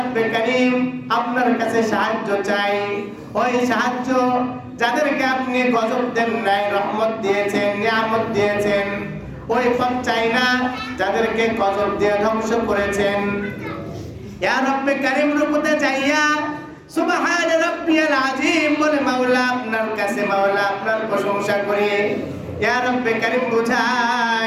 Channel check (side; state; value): both; identical; correlation 1.00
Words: কারীম আপনার কাছে সাহায্য চাই। ওই সাহায্য যাদেরকে আপনি গজব দেন নাই, রহমত দিয়েছেন, নিয়ামত দিয়েছেন, ওই পথ চাই না যাদেরকে গজব দিয়ে ধ্বংস করেছেন। ইয়া রব্বে কারীম রুকুতে যাইয়া সুবহান রাব্বিয়াল আযীম বলে মাওলা আপনার কাছে মাওলা আপনার প্রশংসা করি। ইয়া রব্বে কারীম